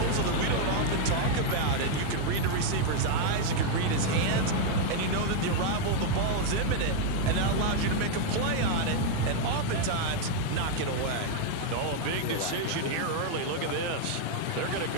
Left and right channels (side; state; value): both; different; correlation 0.00